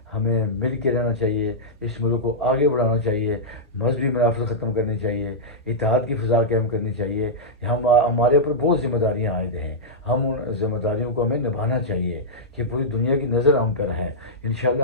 ہمیں مل کے رہنا چاہیے، اس ملک کو آگے بڑھانا چاہیے، مذہبی منافرت ختم کرنی چاہیے، اتحاد کی فضا قائم کرنی چاہیے۔ ہمارے اوپر بہت ذمہ داریاں عائد ہیں، ہم ان ذمہ داریوں کو ہمیں نبھانا چاہیے کہ پوری دنیا کی نظر ہم پر ہے۔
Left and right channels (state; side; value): normal; both; correlation -0.10